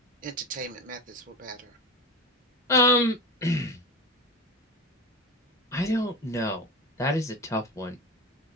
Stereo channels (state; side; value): normal; both; correlation 0.24